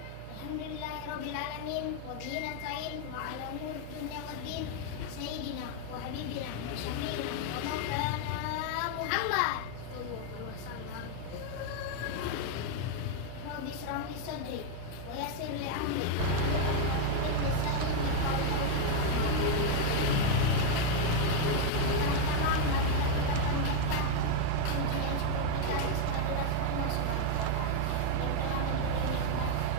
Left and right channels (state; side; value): different; both; correlation 0.01